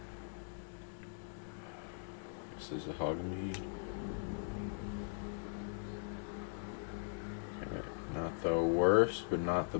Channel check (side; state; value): right; silent; digital silence